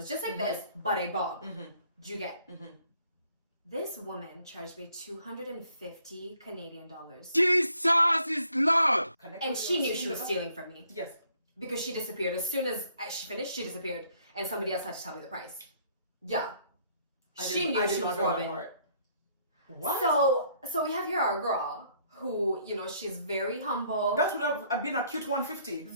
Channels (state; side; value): inverted; both; correlation -0.65